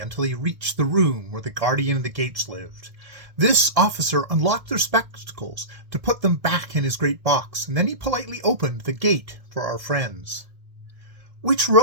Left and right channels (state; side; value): late; left; 1.6 ms